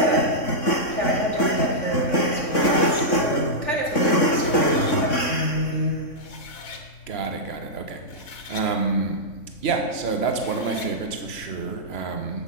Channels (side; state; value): right; late; 3.6 ms